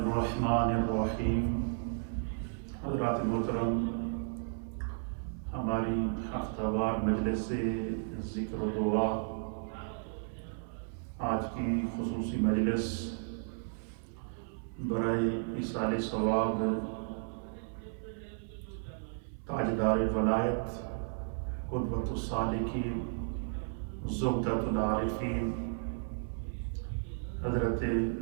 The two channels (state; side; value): silent; left; 55 dB below the other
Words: الرحیم۔ حضرات محترم، ہماری ہفتہ وار مجلس ذکر و دعا آج کی خصوصی مجلس برائے ایصال ثواب تاجدار ولایت قدوۃ السالکین زبدۃ العارفین حضرت